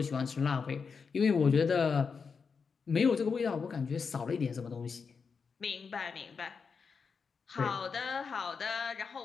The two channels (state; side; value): quieter; right; 5.5 dB